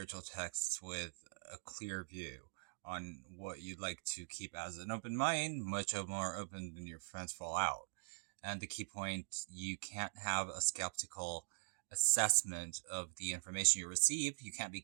texts with a clear view on what you'd like to keep as an open mind, much more open than your friends fall out. And the key point, you can't have a skeptical assessment of the information you receive. You can't be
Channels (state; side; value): silent; left; digital silence